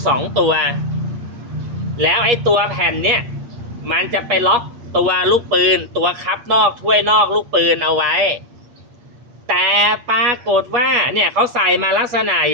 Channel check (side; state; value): left; late; 8.6 ms